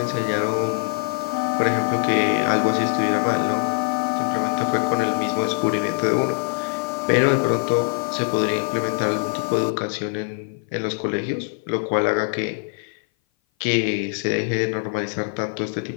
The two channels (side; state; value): right; silent; 57 dB below the other